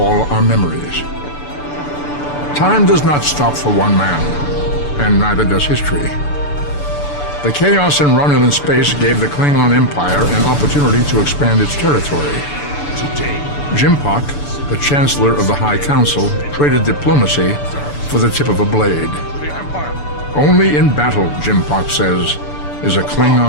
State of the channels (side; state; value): right; late; 6.9 ms